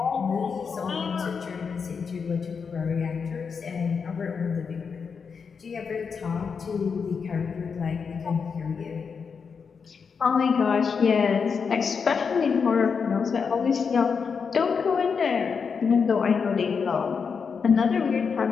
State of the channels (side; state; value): right; quieter; 5.8 dB